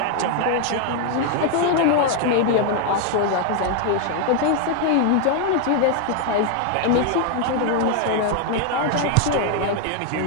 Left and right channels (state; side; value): different; both; correlation 0.00